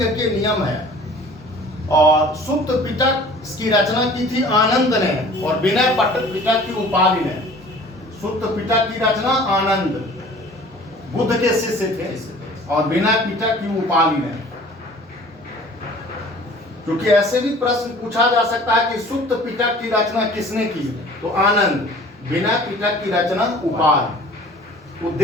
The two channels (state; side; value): normal; both; correlation 0.47